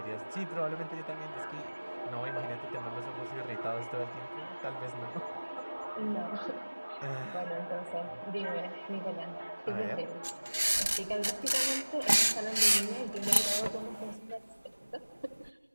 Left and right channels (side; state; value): both; inverted; correlation -1.00